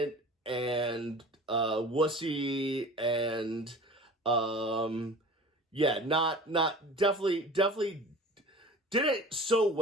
and wussy and definitely did it so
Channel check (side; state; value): both; normal; correlation 0.40